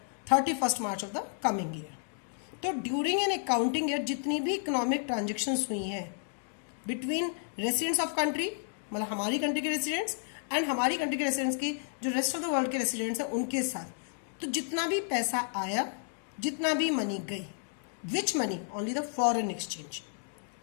31st March of the coming year. तो during an accounting year जितनी भी economic transactions हुई हैं between residents of country, मतलब हमारी country के residents and हमारी country के रेसिडेंट्स की जो रेस्ट ऑफ द वर्ल्ड के रेसिडेंट्स हैं उनके साथ, तो जितना भी पैसा आया, जितना भी मनी गई, विच money? Only the foreign exchange.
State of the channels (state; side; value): silent; right; 57 dB below the other